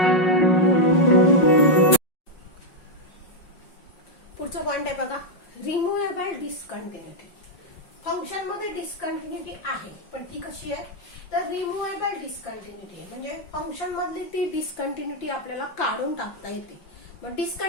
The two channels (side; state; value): right; late; 5.4 ms